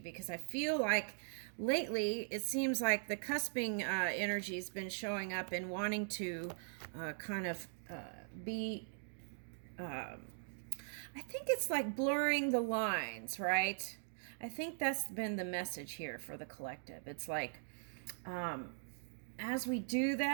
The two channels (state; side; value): silent; left; digital silence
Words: I feel like lately it seems like the cusping energy has been showing up and wanting to be, I think it's like blurring the lines, right? I think that's been the message here for the collective. It's like, as we do